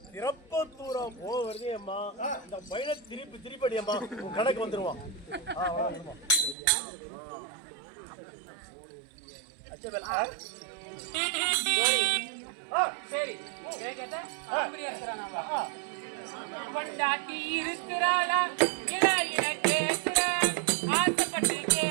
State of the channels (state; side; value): drops out; left; at 6.6 s